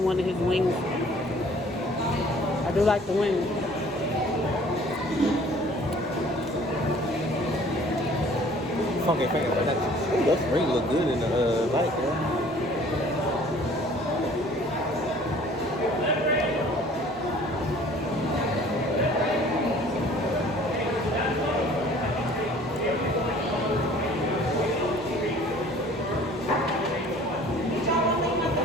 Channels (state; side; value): normal; both; correlation 0.52